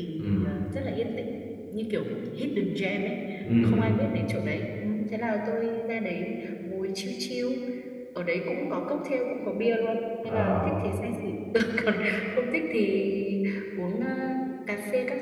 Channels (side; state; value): both; identical; correlation 1.00